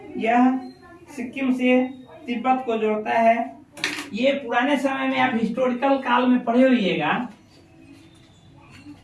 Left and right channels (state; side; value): identical; both; correlation 1.00